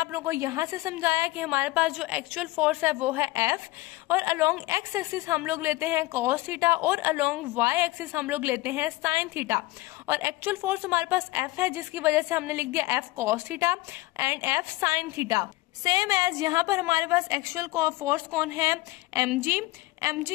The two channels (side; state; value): right; quieter; 19.7 dB